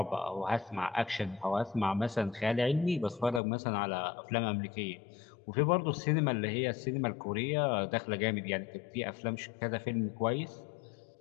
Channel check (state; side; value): drops out; right; at 3.4 s